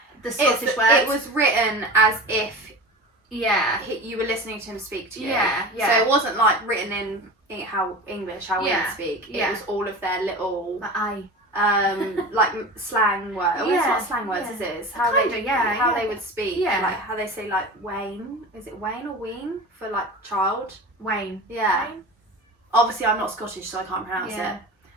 the Scottish words. It was written as if you were listening to him speak to you. Yeah. So it wasn't like written in how we would speak. It was all of their little like slang words. Well, it's not slang words, is it? It's how they would speak. Yeah. Like how they say like Wayne. Is it Wayne or Ween for like child? Wayne. Yeah. Wayne? Obviously I'm not Scottish, so I can't pronounce it.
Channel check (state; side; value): normal; both; correlation 0.32